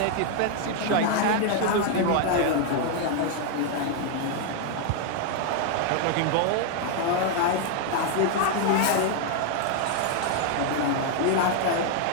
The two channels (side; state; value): both; different; correlation 0.00